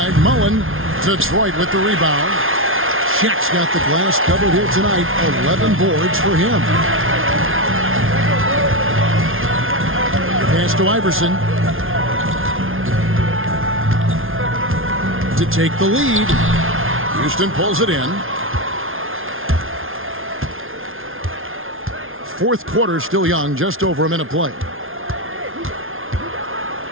Mullen. Detroit with the rebound. Shaq's got the glass covered here tonight. 11 boards for him. Pass to Iverson. To take the lead. Houston pulls it in. Fourth quarter still young, just over a minute play.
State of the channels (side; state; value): left; late; 0.60 ms